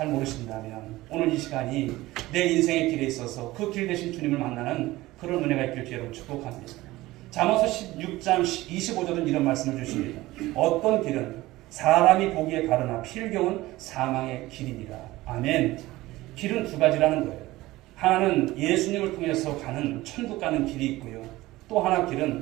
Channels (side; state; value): left; quieter; 18.2 dB